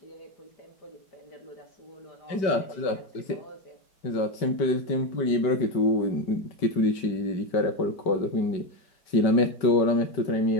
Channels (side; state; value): right; late; 5.2 ms